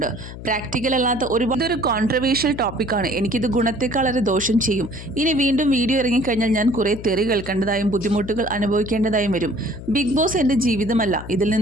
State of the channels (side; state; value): left; noise; hum, 12 dB below the sound